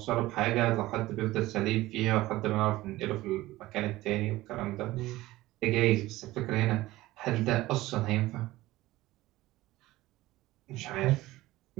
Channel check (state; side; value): quieter; left; 17.5 dB